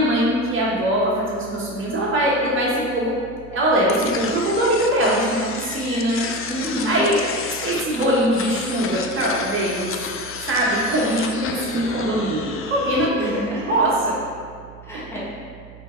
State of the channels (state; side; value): noise; right; hum, 19 dB below the sound